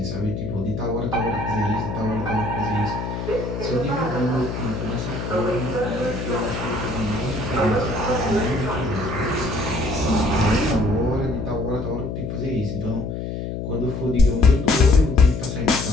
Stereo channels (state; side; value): noise; left; hum, 5 dB below the sound